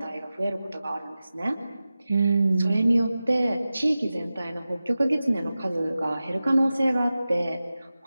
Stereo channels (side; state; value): both; inverted; correlation -0.95